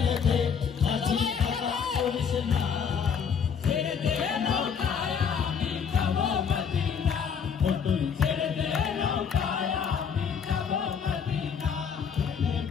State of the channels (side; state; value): right; quieter; 6.9 dB